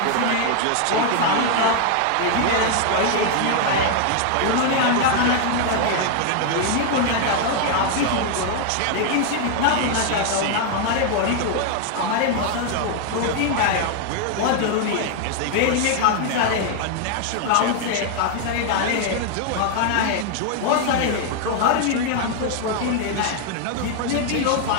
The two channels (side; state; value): both; different; correlation 0.00